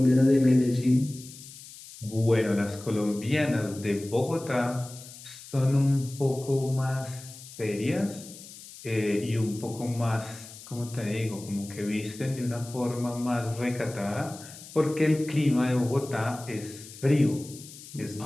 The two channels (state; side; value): noise; left; hiss, 16 dB below the sound